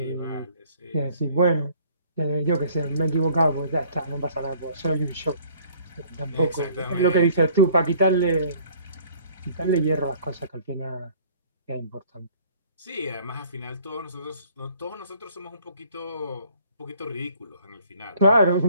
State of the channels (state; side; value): inverted; both; correlation -0.56